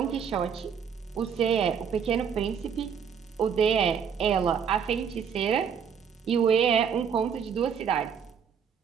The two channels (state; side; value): quieter; left; 7.3 dB